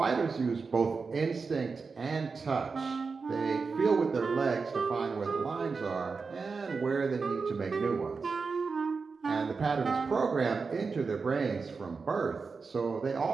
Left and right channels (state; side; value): quieter; left; 4.8 dB